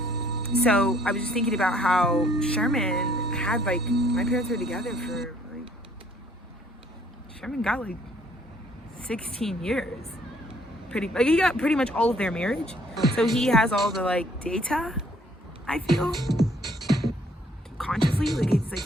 So I was just thinking about how Sherman had like, my parents were together for like, Sherman got like 16 years, he got pretty much all of their marriage. So he has all the like data, I feel, consciously. Like it's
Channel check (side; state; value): both; normal; correlation 0.63